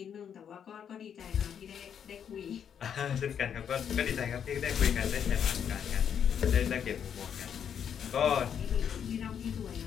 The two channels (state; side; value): quieter; right; 8.2 dB